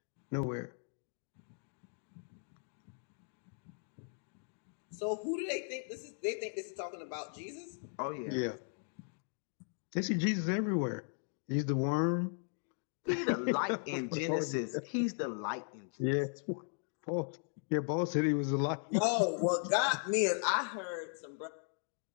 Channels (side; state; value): right; silent; 53 dB below the other